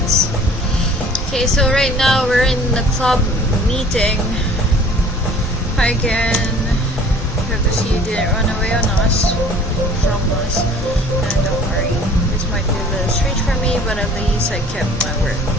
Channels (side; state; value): both; normal; correlation 0.50